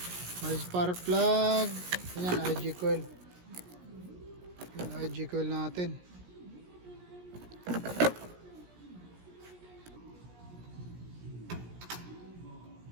May spark plug. Yan, IG coil. Yan, IG coil natin.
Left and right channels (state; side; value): late; left; 17 ms